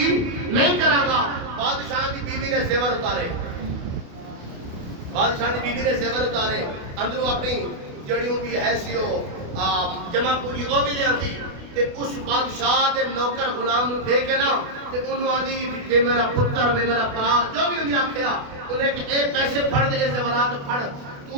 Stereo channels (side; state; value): left; late; 28 ms